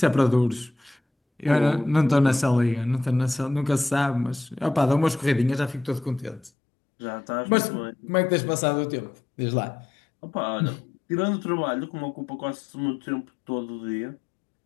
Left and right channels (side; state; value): right; drops out; at 6.5 s